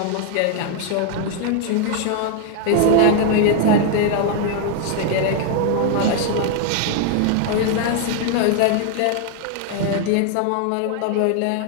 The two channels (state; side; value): different; both; correlation 0.00